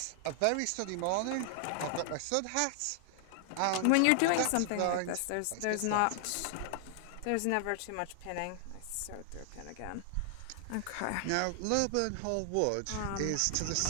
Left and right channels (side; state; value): both; different; correlation 0.00